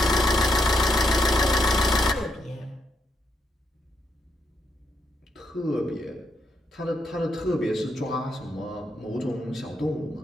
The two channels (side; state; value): both; normal; correlation 0.78